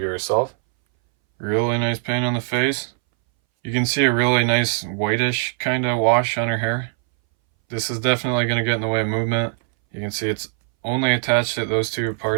herself, really nice paint on the face. You can see a really nice whitish kind of wash on her hair. This is definitely going to get in the way of movement. You can see it's only attached at those two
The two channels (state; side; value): silent; left; 62 dB below the other